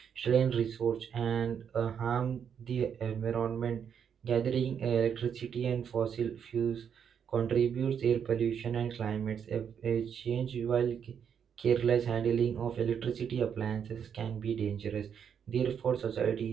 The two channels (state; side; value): quieter; left; 7.8 dB